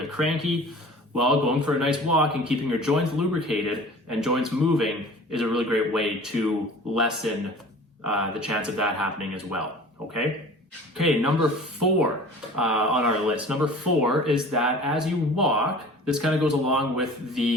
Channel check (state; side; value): normal; both; correlation 0.43